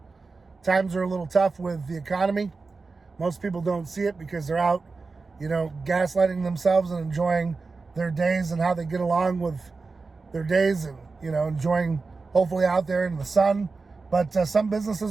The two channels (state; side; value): quieter; left; 4.1 dB